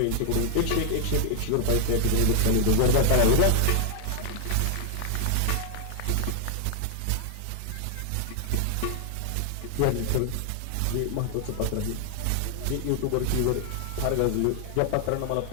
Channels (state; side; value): different; both; correlation 0.00